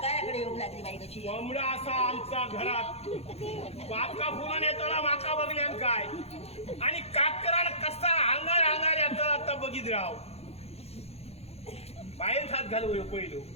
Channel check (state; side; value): late; right; 0.30 ms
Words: कोंबडा असा आमचा घरात बाका फुलून येताना माका बघल्यान काय आणि काकराला कसा अंगार अंगार येताना आता बघित राव बाहेर हात घालू पहिलो